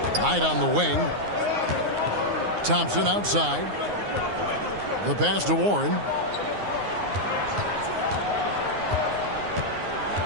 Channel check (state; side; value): late; left; 9.6 ms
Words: Knight on the wing. Thompson outside. The pass to Warren.